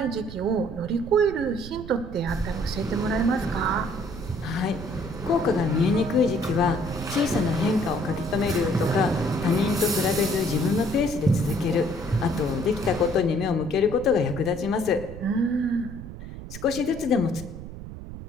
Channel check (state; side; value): noise; right; rumble, 12 dB below the sound